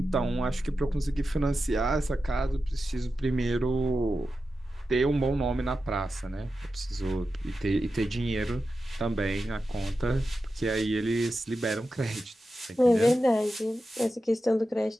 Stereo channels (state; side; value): normal; both; correlation 0.91